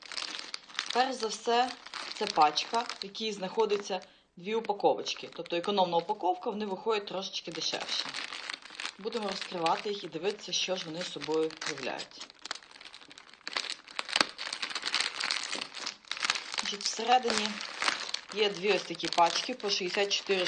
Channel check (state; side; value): identical; both; correlation 1.00